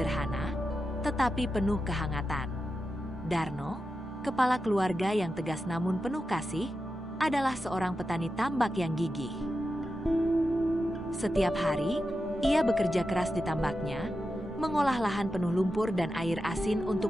tetapi penuh kehangatan. Darno, kepala keluarga yang tegas namun penuh kasih, adalah seorang petani tambak yang gigih. Setiap hari, ia bekerja keras di tambaknya, mengolah lahan penuh lumpur dan air asin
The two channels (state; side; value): normal; both; correlation 0.90